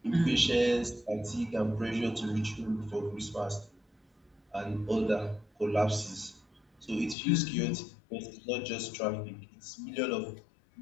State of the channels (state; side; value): drops out; right; at 7.2 s